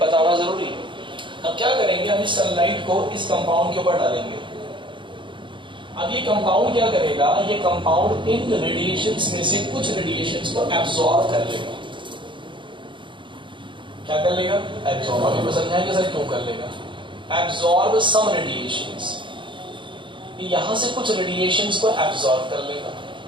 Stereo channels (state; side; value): late; left; 0.24 ms